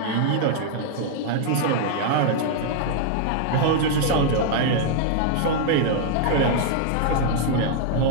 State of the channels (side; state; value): both; different; correlation -0.01